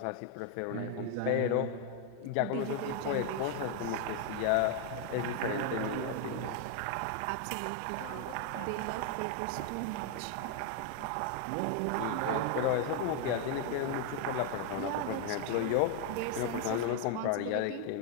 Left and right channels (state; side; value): different; both; correlation 0.00